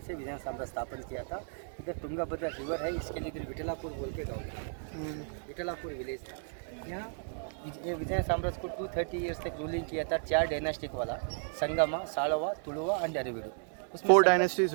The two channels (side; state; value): left; silent; 55 dB below the other